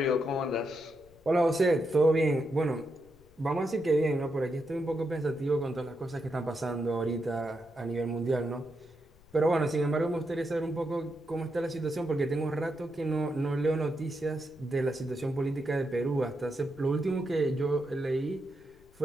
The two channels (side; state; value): left; noise; rumble, 27 dB below the sound